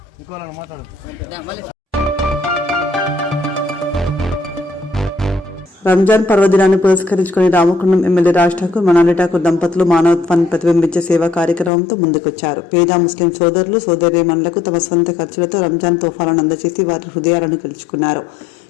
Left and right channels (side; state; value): right; drops out; at 11.7 s